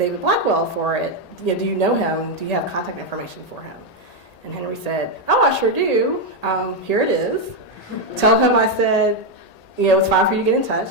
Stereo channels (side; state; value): right; late; 1.8 ms